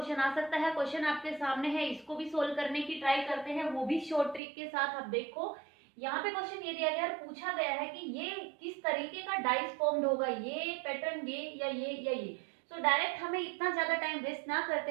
आ सकता है, क्वेश्चन आपके सामने है, इसको भी सोल्व करने की ट्राई करते हैं, वो भी शॉर्ट ट्रिक के साथ। अब देखो यहाँ पे क्वेश्चन ये दिया गया है, पूछा गया है कि ये किस तरीके का डाइस फॉर्म्ड होगा, ये पैटर्न ये या ये या ये। तो डायरेक्ट हमें इतना ज्यादा टाइम वेस्ट ना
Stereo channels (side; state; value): left; drops out; at 4.4 s